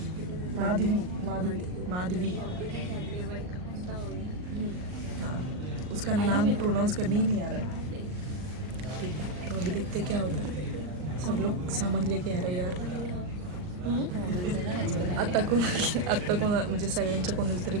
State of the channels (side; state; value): left; late; 39 ms